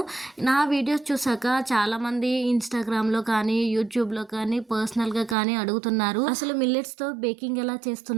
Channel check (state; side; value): drops out; left; at 5.4 s